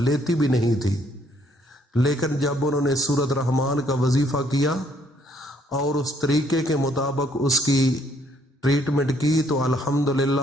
بھی نہیں تھی، لیکن جب انہوں نے سورۃ رحمان کا وظیفہ کیا اور اس طریقے کے مطابق اس کی ٹریٹمنٹ کی، تو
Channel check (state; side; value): normal; both; correlation 0.66